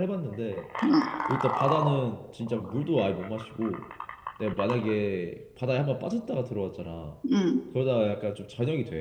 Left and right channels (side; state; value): both; identical; correlation 1.00